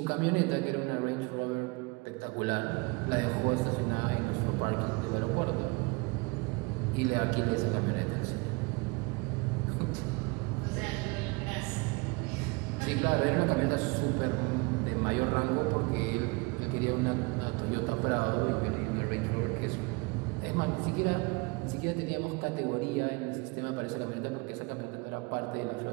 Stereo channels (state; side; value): quieter; left; 27.3 dB